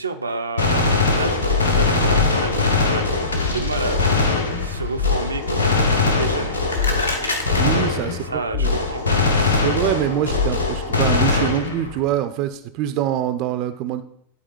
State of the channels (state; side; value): inverted; both; correlation -0.30